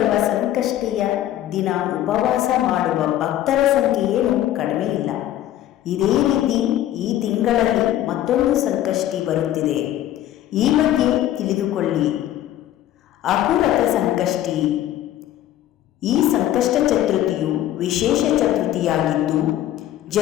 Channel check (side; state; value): right; quieter; 12.8 dB